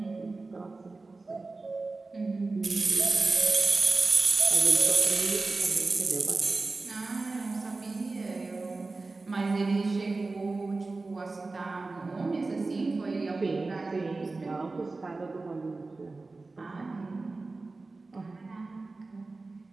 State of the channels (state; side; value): quieter; left; 3.6 dB